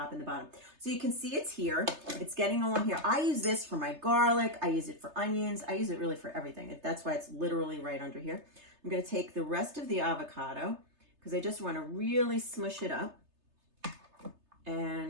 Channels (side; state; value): left; late; 3.3 ms